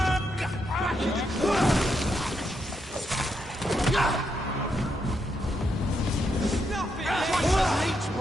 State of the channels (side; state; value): both; normal; correlation 0.80